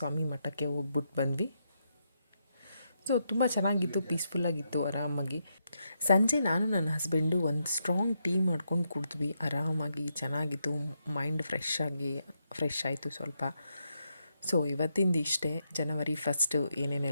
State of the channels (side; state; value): both; inverted; correlation -0.82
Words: ಮಠಕ್ಕೆ ಹೋಗ್ಬಿಟ್ಟು ಬಂದ್ವಿ. ಸೊ ತುಂಬ ಚೆನ್ನಾಗಿತ್ತು, ಪೀಸ್ಫುಲ್ಲಾಗಿತ್ತು, ಆರಾಮಾಗಿ. ಸಂಜೆ ನಾನು ನನ್ನ ಹಸ್ಬೆಂಡು ಒಂದು ಸ್ಟ್ರಾಂಗ್ ಟೀ ಮಾಡ್ಕೊಂಡು ಕುಡಿದ್ವಿ. ಆರಾಮಾಗಿ ಚೆನ್ನಾಗಿತ್ತು. ಮೈಂಡ್ ಫ್ರೆಶ್ ಆಯಿತು ಸ್ವಲ್ಪ. ಸೊ ಇವತ್ತಿಂದ ಇಷ್ಟೇ. ಜನವರಿ ಫಸ್ಟು